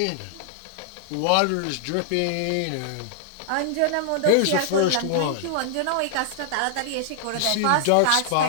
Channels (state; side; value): different; both; correlation -0.01